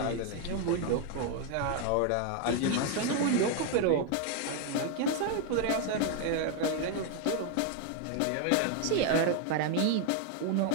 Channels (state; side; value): different; both; correlation 0.01